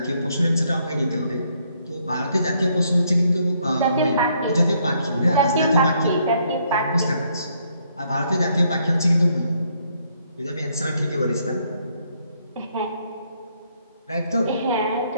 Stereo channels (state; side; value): inverted; both; correlation -0.71